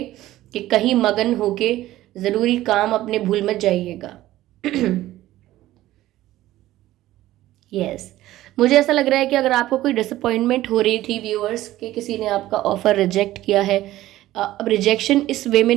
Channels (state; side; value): quieter; left; 15.3 dB